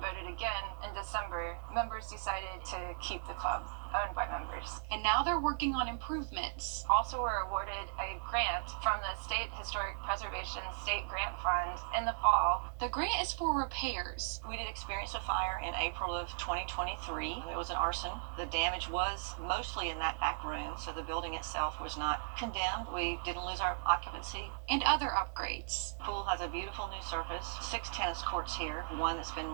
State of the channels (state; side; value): silent; left; digital silence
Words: again in December. Members decided to keep the club, owned by members. And now they're working on improvements. Also were awarded a grant from the State Historic Preservation State Grant Fund in the fall. The grant is for repairs. We did experience a fire in April of 2023. It was an arson. The damage was mostly in that back room, so the building itself was not condemned. We didn't lose our occupancy. And other upgrades. Pool has a beautiful new surface, 6 tennis courts here, one that's been